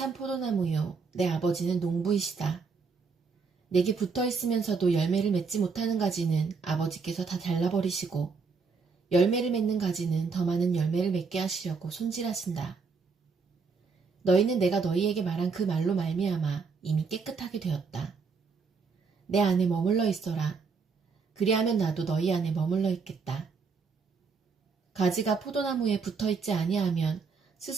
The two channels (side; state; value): left; quieter; 5.0 dB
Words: 포도나무요 내 아버지는 농부이시다. 내게 붙어있으면서도 열매를 맺지 못하는 가지는 아버지께서 다 잘라버리시고 열매를 맺는 가지는 더 많은 열매를 맺게 하시려고 손질하신다. 너희는 내가 너희에게 말한 그 말로 말미암아 이미 깨끗하게 되었다. 내 안에 머물러 있어라. 그리하면 나도 너희 안에 머물러 있겠다. 가지가 포도나무에 붙어있지 아니하면